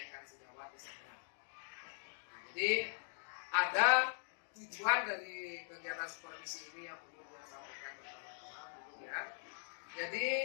sejawat di sana. Jadi ada tujuan dari kegiatan supervisi ini yang perlu saya sampaikan pertama-tama ya. Jadi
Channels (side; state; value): right; silent; digital silence